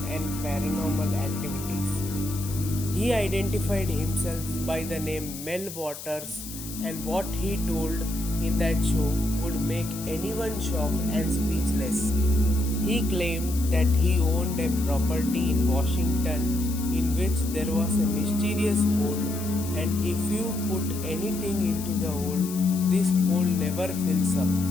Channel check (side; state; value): left; noise; hiss, 11 dB below the sound